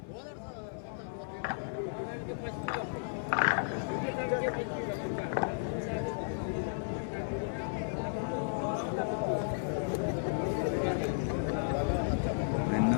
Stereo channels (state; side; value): silent; right; 55 dB below the other